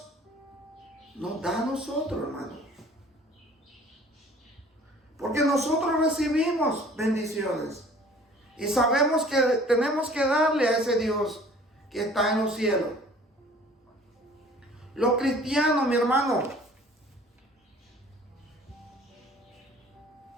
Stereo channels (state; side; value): normal; both; correlation 0.51